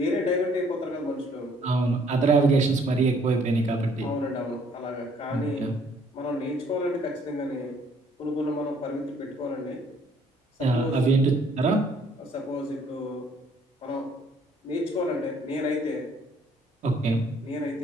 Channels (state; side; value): normal; both; correlation 0.62